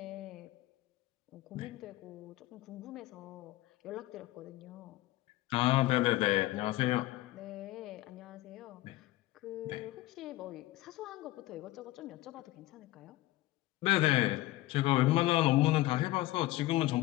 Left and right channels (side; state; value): right; quieter; 17.3 dB